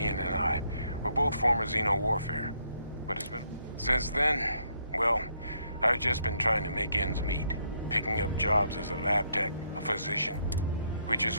and I. We're both former Xeno warfare. But it's been... Since then, well, I've just been trying to make ends meet. Picking up jobs as a lab tech, a physician. Which is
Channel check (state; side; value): inverted; both; correlation -0.72